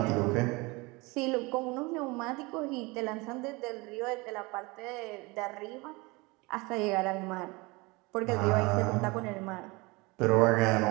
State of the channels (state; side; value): quieter; left; 25.0 dB